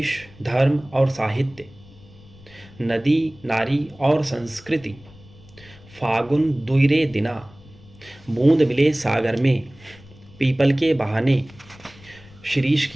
धर्म और साहित्य, नदी नारी और संस्कृति, फागुन दुइरे दिना, बूंद मिले सागर में, पीपल के बहाने, शिरीष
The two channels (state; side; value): noise; left; rumble, 23 dB below the sound